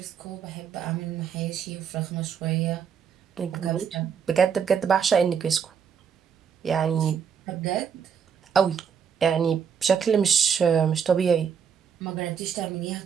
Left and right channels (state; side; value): quieter; left; 7.2 dB